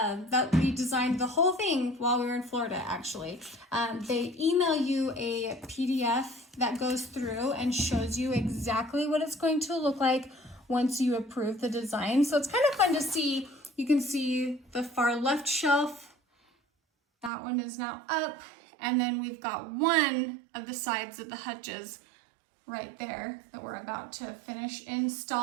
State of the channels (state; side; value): drops out; left; at 17.3 s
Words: we designed the whole thing while we were in Florida, actually. They email you a PDF that goes through and shows you exactly what it's going to look like once you approve the design. So it's kind of fun to see. You can see the far left shelf. That one is now up. And then we've got one of the sides of the hutches right there that we're about to finish